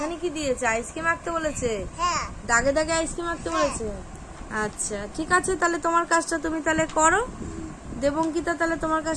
কি দিয়েছে? আইসক্রিম আঁকতে বলেছে। হ্যাঁ। দাগে দাগে আইসক্রিম আঁকতে বলেছে। আচ্ছা ঠিক আছে, তাহলে তোমার কাজটা তুমি তাহলে করো। দেবঙ্কিতা, তাহলে তোমার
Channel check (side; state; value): both; identical; correlation 1.00